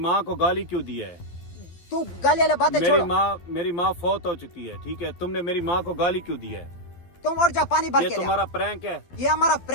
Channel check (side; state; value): right; late; 12 ms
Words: को गाली क्यों दिया है? तू गाली वाली बातें छोड़। मेरी माँ फौत हो चुकी है, ठीक है? तुमने मेरी माँ को गाली क्यों दिया है? तुम उठ जा, पानी भर ये के ले। तुम्हारा प्रैंक है। ये हमारा